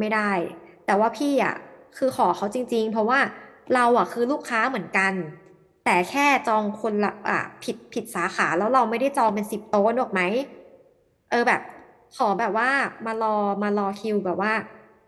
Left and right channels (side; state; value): both; identical; correlation 1.00